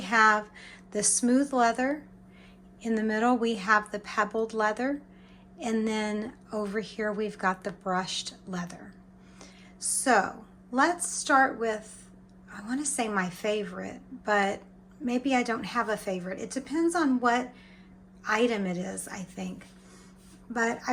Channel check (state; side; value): identical; both; correlation 1.00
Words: the smooth leather, in the middle we have the pebbled leather, and then over here we've got the brushed leather. So let's start with, I want to say my favorite, but maybe I don't have a favorite. It depends on what item it is, I think. But I